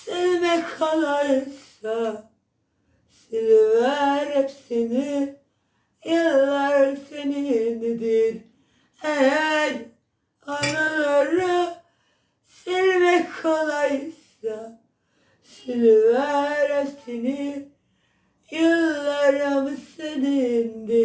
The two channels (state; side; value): identical; both; correlation 1.00